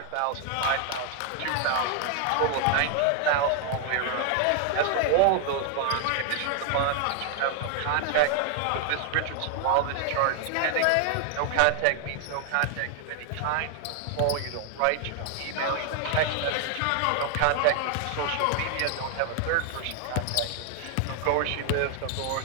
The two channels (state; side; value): different; both; correlation 0.00